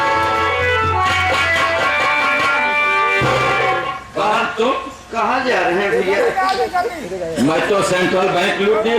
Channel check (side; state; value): both; identical; correlation 1.00